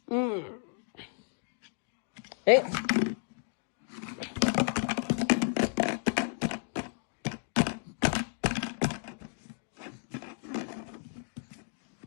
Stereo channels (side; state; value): right; silent; 56 dB below the other